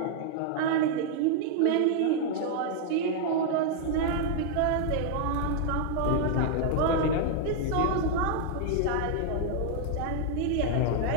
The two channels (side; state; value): both; different; correlation 0.00